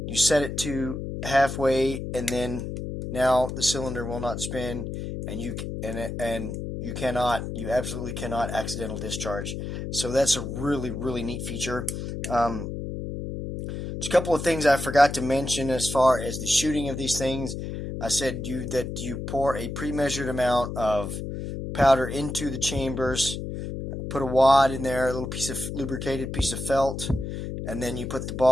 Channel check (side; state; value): left; noise; hum, 6 dB below the sound